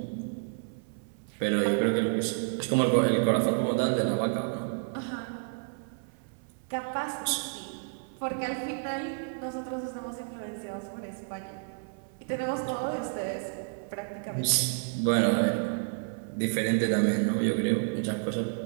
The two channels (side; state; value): left; silent; 58 dB below the other